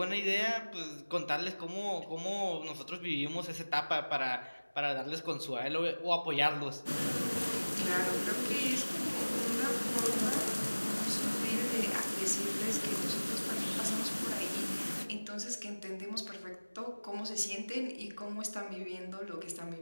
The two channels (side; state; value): both; inverted; correlation -1.00